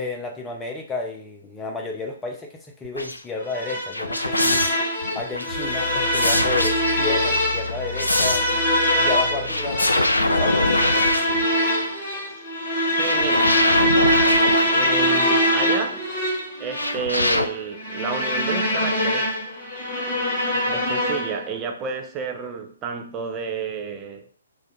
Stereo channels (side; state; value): both; inverted; correlation -0.53